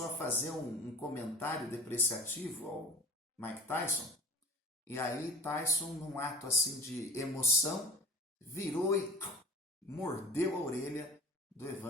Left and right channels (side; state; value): both; normal; correlation 0.39